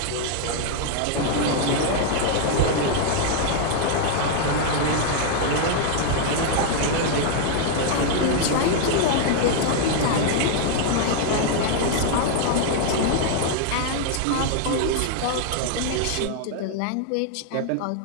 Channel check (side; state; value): both; different; correlation 0.00